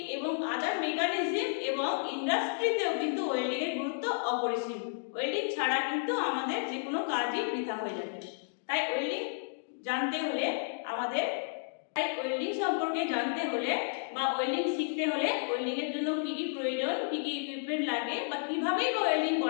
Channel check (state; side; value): silent; right; digital silence